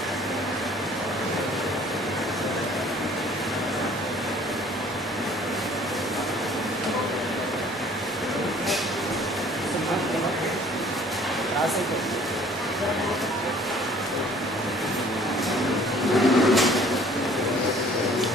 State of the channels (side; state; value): both; normal; correlation 0.54